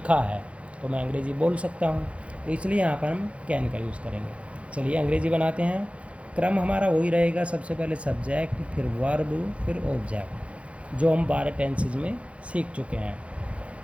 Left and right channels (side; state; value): left; late; 0.062 ms